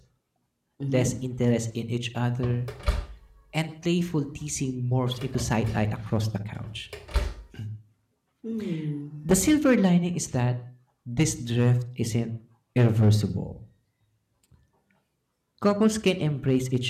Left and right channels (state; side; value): identical; both; correlation 1.00